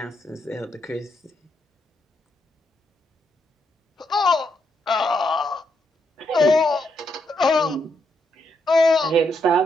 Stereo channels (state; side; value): normal; both; correlation 0.79